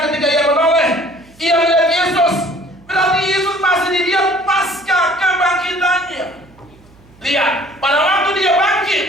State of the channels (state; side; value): noise; right; hum, 27 dB below the sound